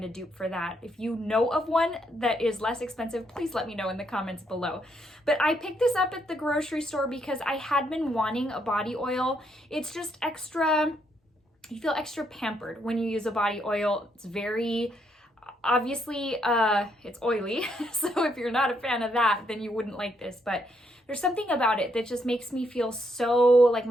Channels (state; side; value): normal; both; correlation 0.75